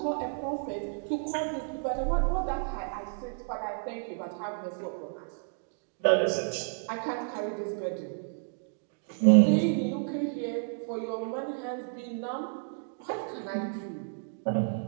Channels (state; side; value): silent; left; digital silence